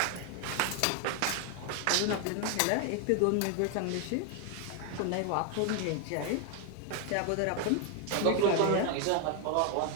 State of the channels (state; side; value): different; both; correlation 0.00